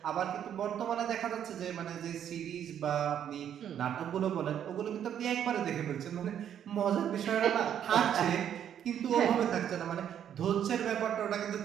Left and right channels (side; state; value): left; quieter; 9.5 dB